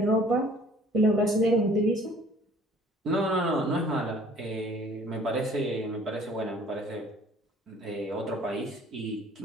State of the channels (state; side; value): normal; both; correlation 0.54